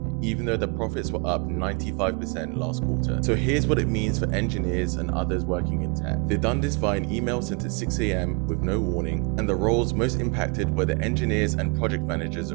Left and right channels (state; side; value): quieter; left; 32.5 dB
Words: even though their profits were up 95% last quarter. So here's what it means for engineers and others working in tech. They've done this via an email sent at 6 a.m. with no warning, and the roles most impacted were the engineers and project managers